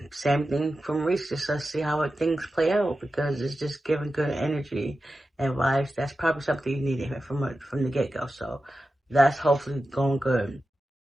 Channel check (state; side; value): normal; both; correlation 0.92